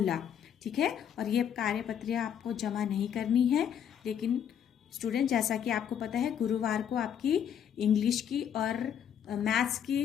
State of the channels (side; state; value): right; quieter; 8.8 dB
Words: ठीक है, और ये कार्यपत्रियाँ आपको जमा नहीं करनी है, लेकिन स्टूडेंट जैसा कि आपको पता है गुरुवार को आपकी इंग्लिश की और मैथ्स